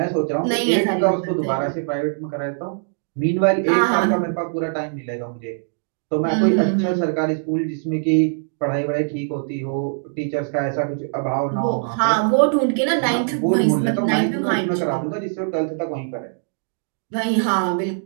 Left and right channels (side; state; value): left; silent; digital silence